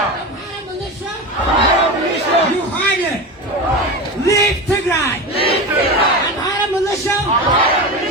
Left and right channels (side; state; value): both; normal; correlation 0.23